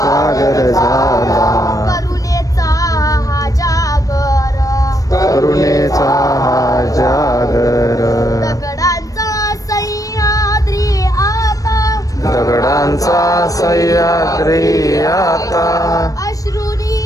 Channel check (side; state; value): right; late; 0.17 ms